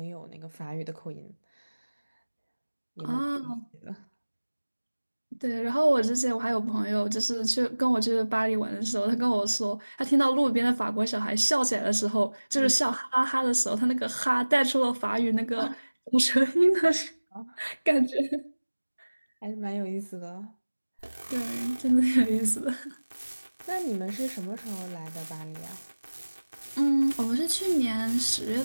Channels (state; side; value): inverted; both; correlation -1.00